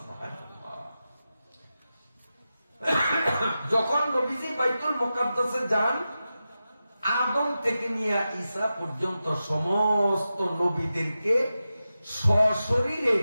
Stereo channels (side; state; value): both; inverted; correlation -0.92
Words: যখন নবীজি বাইতুল মুকাদ্দাসে যান, আদম থেকে নিয়ে ঈসা পর্যন্ত সমস্ত নবীদেরকে সশরীরে